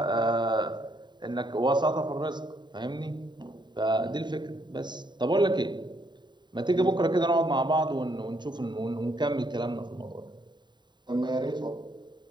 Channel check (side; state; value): left; late; 0.22 ms